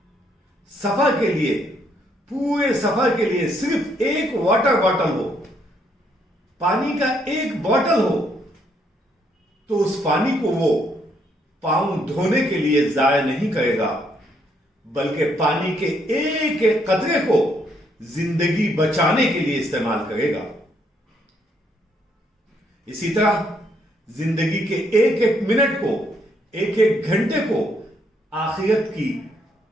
سفر کے لیے، پورے سفر کے لیے صرف ایک واٹر باٹل ہو، پانی کا ایک باٹل ہو، تو اس پانی کو وہ پاؤں دھونے کے لیے ضائع نہیں کرے گا، بلکہ پانی کے ایک ایک قطرے کو زندگی بچانے کے لیے استعمال کرے گا. اسی طرح زندگی کے ایک ایک منٹ کو، ایک ایک گھنٹے کو آخرت کی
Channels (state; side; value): normal; both; correlation 0.72